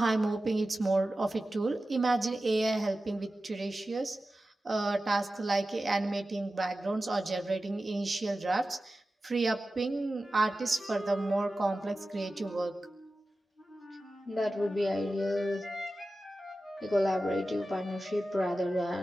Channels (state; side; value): normal; both; correlation 0.94